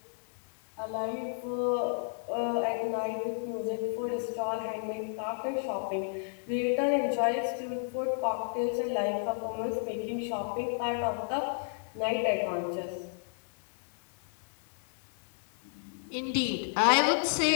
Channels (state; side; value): silent; right; digital silence